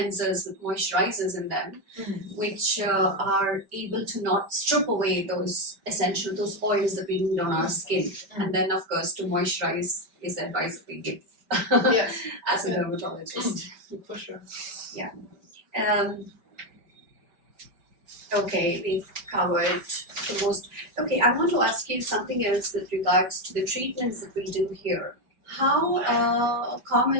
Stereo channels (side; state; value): left; late; 5.1 ms